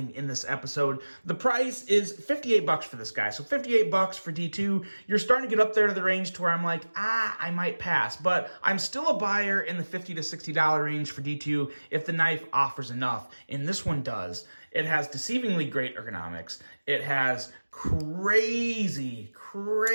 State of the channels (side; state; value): both; inverted; correlation -1.00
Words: in this episode. The price is $58 for this guy. So $58 for D2. You're starting to get up there to the range to where I'm like, I might pass. But I'm still a buyer in the $50 to $60 range for D2 if the knife offers enough. And this one does. It has deceivingly great ergonomics. It has crazy